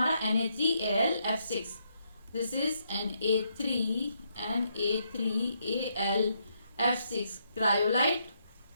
Na3AlF6, this is Na3AlF6 cryolite,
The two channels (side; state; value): both; inverted; correlation -0.76